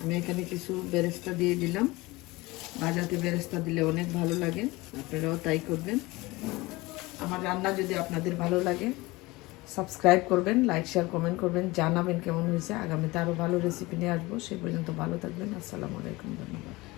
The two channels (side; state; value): right; quieter; 21.6 dB